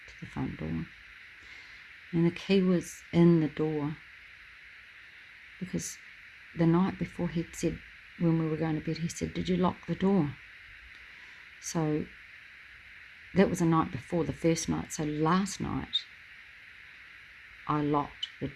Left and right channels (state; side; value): identical; both; correlation 1.00